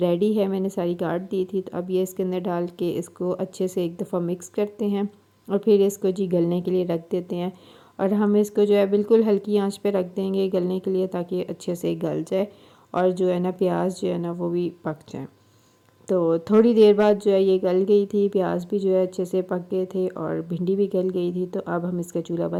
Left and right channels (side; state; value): both; identical; correlation 1.00